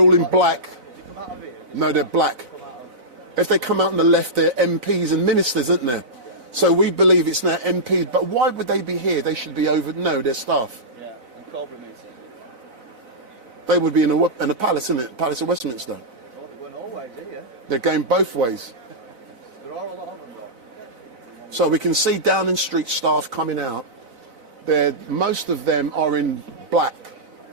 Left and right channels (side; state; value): left; late; 4.0 ms